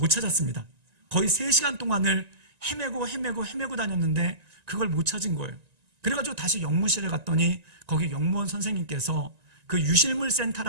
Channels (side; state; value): left; late; 1.9 ms